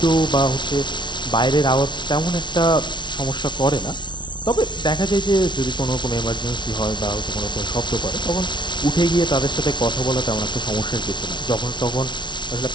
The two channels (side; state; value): right; late; 0.22 ms